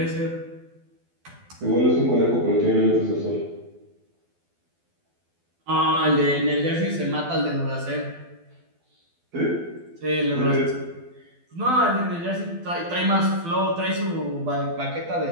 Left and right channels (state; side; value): late; left; 12 ms